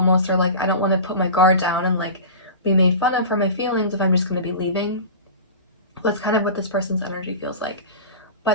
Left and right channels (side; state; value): both; inverted; correlation -0.33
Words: like, I don't want to put my guard down and like be made fun of for my feelings if I'm just going to be leaving. That's kind of what this person's energy feels like.